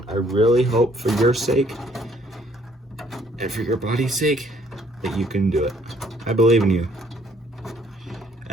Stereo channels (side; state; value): both; normal; correlation 0.64